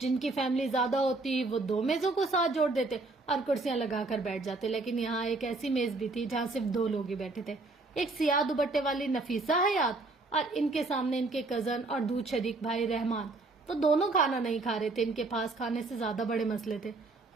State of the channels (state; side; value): quieter; left; 3.3 dB